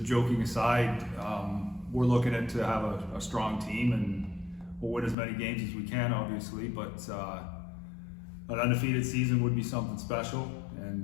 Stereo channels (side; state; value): right; drops out; at 5.2 s